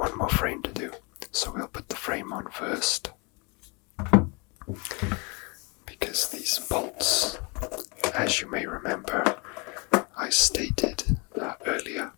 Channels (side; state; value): right; quieter; 30.3 dB